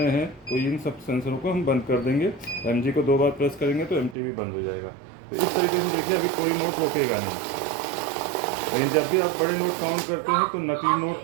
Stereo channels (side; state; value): left; drops out; at 4.2 s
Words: हैं तो इन सब सेंसरों को हम बंद कर देंगे। MG को 2 बार प्रेस करेंगे तो MT भी बंद हो जाएगा। तो इस तरीके से देखिए अभी कोई नोट रोकेगा नहीं। लेकिन जब भी आप बड़े नोट काउंट करते हैं तो नकली